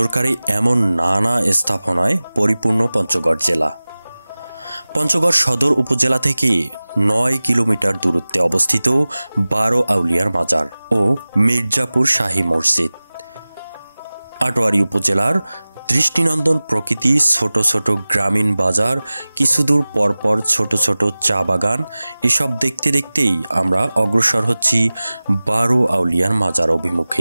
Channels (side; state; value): both; inverted; correlation -0.98